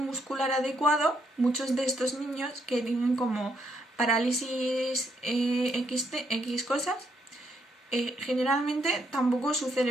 muscular adecuado, muchos de estos niños que tienen como parálisis X cosas, generalmente tampoco su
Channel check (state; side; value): normal; both; correlation 0.74